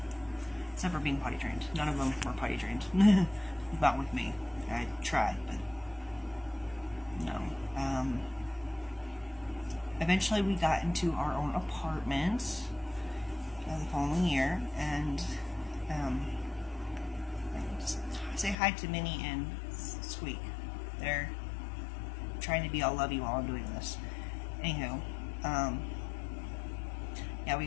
except for being potty trained. None of them were potty trained. Not with me. I tried, but no. Eventually we got into our own apartment the following year, and just say hi to Minnie and Squeak. They're trying to be all lovey while I'm doing this. Anywho, yeah, we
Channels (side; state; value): right; drops out; at 18.6 s